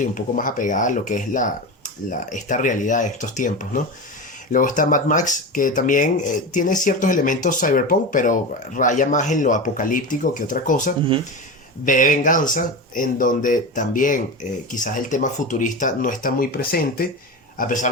y un poco más apegada a lo que es esta realidad de estos tiempos, ¿no? Luego está Mad Max, que también tiene ciertos elementos cyberpunk, pero raya más en lo apocalíptico que otra cosa. Uh-huh. V de Venganza, en donde también quizás el tema futurista no está muy presente, a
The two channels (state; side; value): normal; both; correlation 0.23